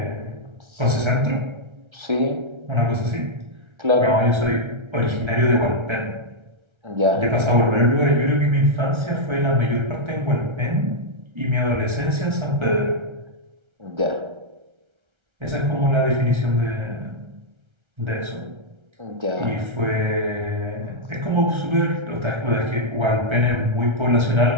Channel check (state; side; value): late; left; 1.3 ms